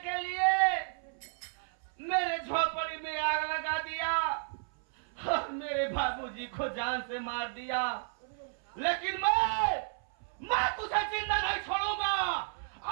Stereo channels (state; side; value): silent; left; 56 dB below the other